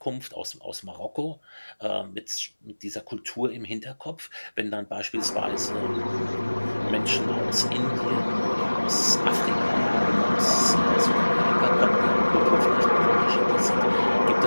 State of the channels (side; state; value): both; inverted; correlation -1.00